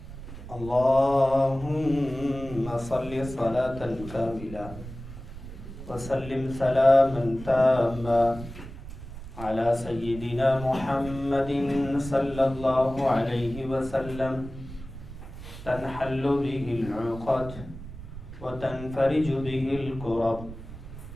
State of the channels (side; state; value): right; noise; rumble, 13 dB below the sound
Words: اللهم صل صلاة كاملة وسلم سلاما تاما على سيدنا محمد صلى الله عليه وسلم تنحل به العقد وتنفرج به الكرب